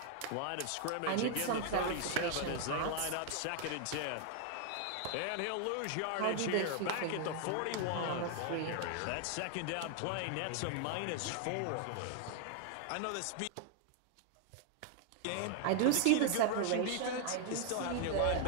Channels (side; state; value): both; different; correlation 0.00